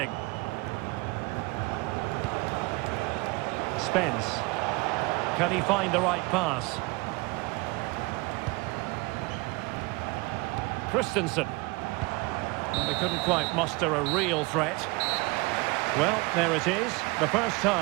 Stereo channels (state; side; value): quieter; left; 25.1 dB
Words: Spence. Can he find the right pass? Christensen. They couldn't quite muster a real threat. Well, there it is. The first